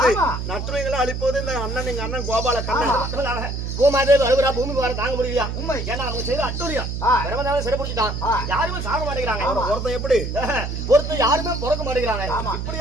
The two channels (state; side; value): noise; right; hum, 4 dB below the sound